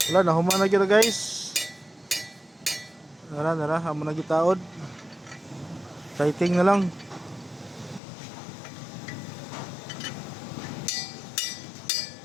Wala na human na gyud guys. Nara amo na gitaod. Fighting na lang.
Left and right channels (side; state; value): right; drops out; at 8.0 s